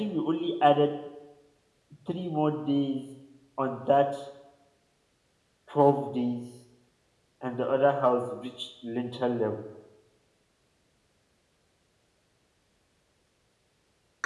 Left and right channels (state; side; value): identical; both; correlation 1.00